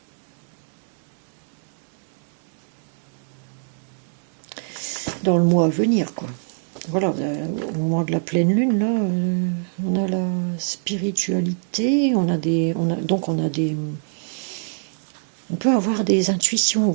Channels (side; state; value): left; silent; digital silence